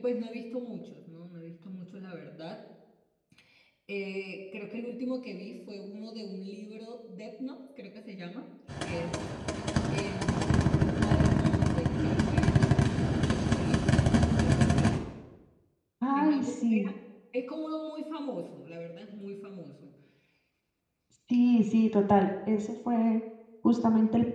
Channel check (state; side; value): identical; both; correlation 1.00